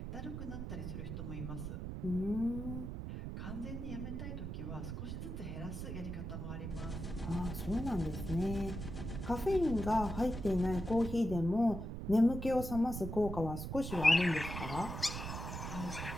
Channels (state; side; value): noise; right; rumble, 6 dB below the sound